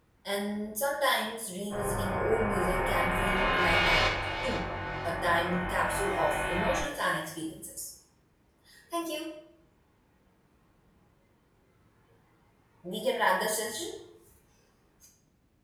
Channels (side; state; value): both; identical; correlation 1.00